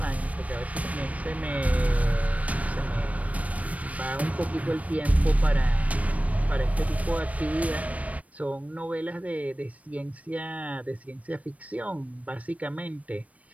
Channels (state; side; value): late; left; 0.068 ms